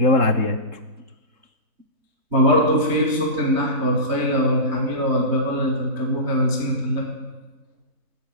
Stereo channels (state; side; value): late; left; 3.3 ms